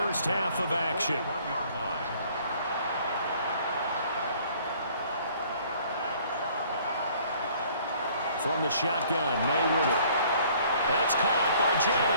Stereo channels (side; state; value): both; inverted; correlation -0.57